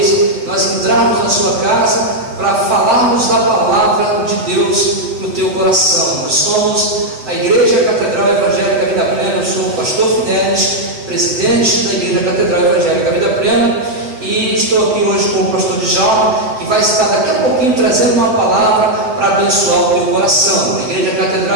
nós entrarmos na sua casa para falarmos da palavra de Deus no teu coração. Nós somos a Igreja Catedral Evangélica Vida Plena. Eu sou o pastor Fidelis, presidente da Igreja Catedral Evangélica Vida Plena, e estou aqui hoje com o pastor Djalma, que vai estar daqui a pouquinho trazendo uma palavra para abençoar o teu coração. A Igreja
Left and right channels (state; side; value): late; left; 7.7 ms